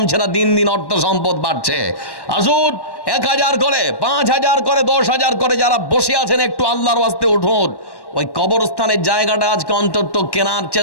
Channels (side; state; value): right; late; 1.1 ms